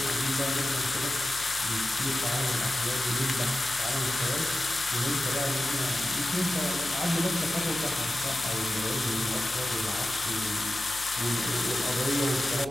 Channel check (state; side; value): noise; left; hum, 18 dB below the sound